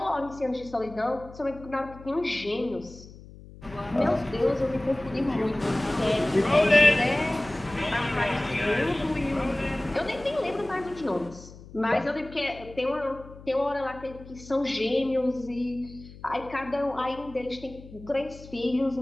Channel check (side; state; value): left; noise; hum, 18 dB below the sound